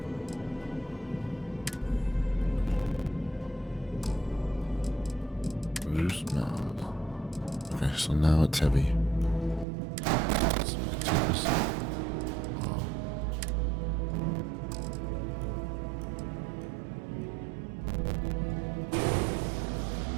Okay, so now it's heavy. So take this.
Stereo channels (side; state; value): left; drops out; at 9.7 s